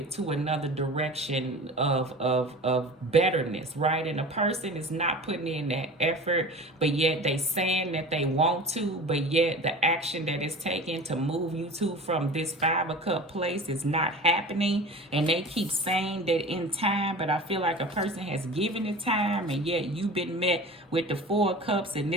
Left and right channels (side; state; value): both; normal; correlation 0.37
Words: to another direction of betterness, right? And a person is not putting in that effort, but yet they saying that they want to, but yet the action that is taken to move you to from this 5 of Cup place is not happening. And they keep saying that in time, but I feel like a person has given it time, and yet you've been met with the 4 of Cups, and